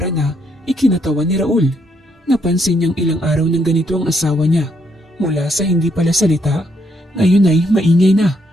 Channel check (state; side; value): normal; both; correlation 0.74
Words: na ikinatawa ni Raul. Napansin niyang ilang araw ng ganito ang asawa niya. Mula sa hindi pala salita, ngayon ay maingay na